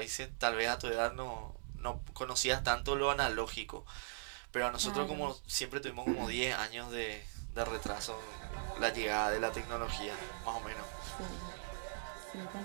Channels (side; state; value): left; silent; digital silence